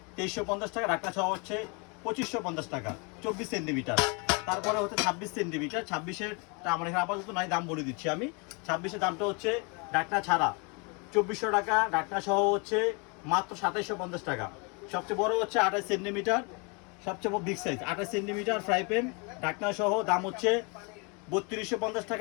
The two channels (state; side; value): quieter; right; 32.3 dB